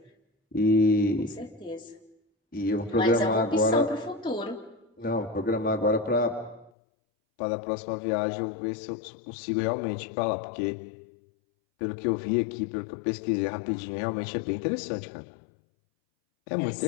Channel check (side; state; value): right; drops out; at 6.7 s